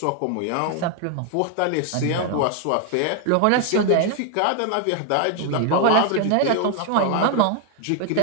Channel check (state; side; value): different; both; correlation 0.00